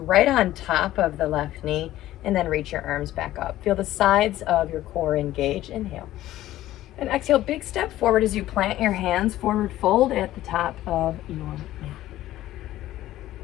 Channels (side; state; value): right; quieter; 14.5 dB